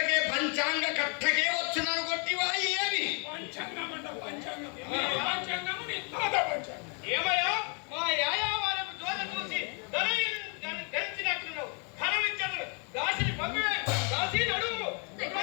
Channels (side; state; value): right; quieter; 37.5 dB